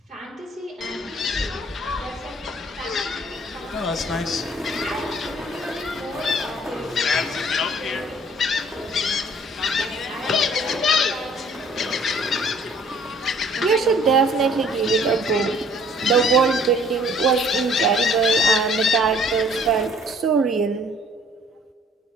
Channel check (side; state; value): both; normal; correlation 0.56